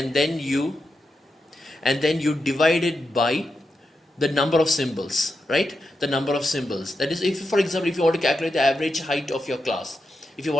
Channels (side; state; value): both; normal; correlation 0.87